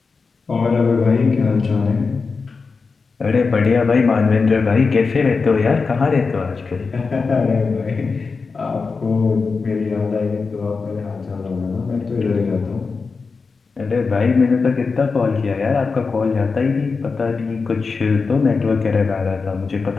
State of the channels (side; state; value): right; quieter; 4.6 dB